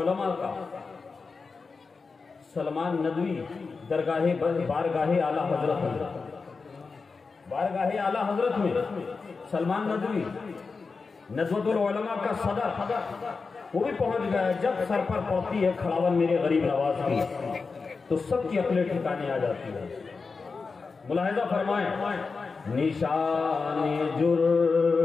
کا سلمان ندوی بارگاہ اعلیٰ حضرت بارگاہ اعلیٰ حضرت میں سلمان ندوی ندوۃ العلماء کا صدر وہ بھی پہنچ گیا. جب سر پر پڑتی ہے کھڑاون میرے غریب نواز کی تو سب کی عقلیں ٹھکانے آ جاتی ہے. ملاحظہ فرمائیں نشان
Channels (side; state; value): right; quieter; 4.5 dB